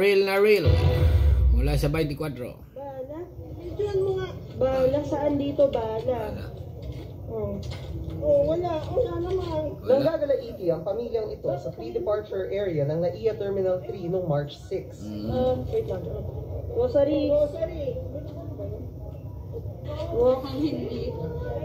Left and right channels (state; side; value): identical; both; correlation 1.00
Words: na real. Mula sa 24. Bala? Diyan mo nga. Bala? Saan dito bala? Wala. Wala naman. Nanggagalaiti ang pamilyang ito sa pre-departure area ng NAIA Terminal 3 noong March 6. Wait lang. Rosary. Mukhang hindi.